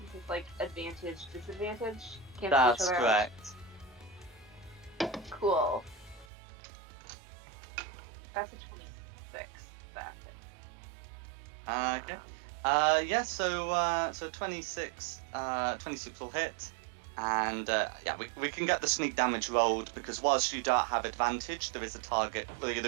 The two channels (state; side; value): drops out; left; at 6.2 s